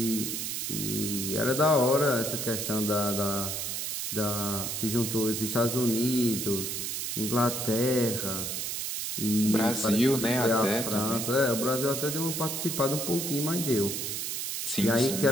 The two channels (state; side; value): noise; right; hiss, 3 dB below the sound